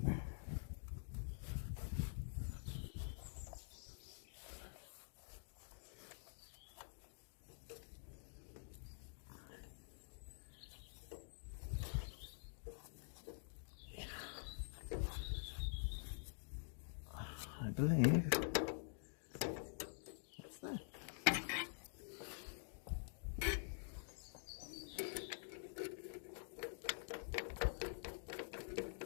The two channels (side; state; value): right; silent; digital silence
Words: I believe that's there.